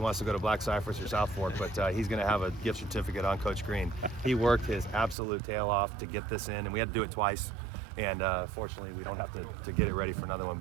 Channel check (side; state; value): left; drops out; at 5.2 s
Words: to go to Black Cypress or South Fork, but he's going to have a gift certificate on Coach Green. He worked his absolute tail off to get this in, and we had to do it twice. And fortunately, we don't have to get it ready for another one.